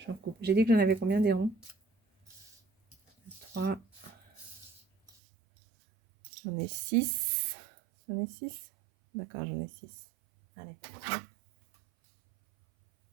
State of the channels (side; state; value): left; drops out; at 5.1 s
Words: coupe. J'ai dit que j'en avais combien des ronds? 3. J'en ai 6. J'en ai 6. D'accord, j'en ai 6. Allez.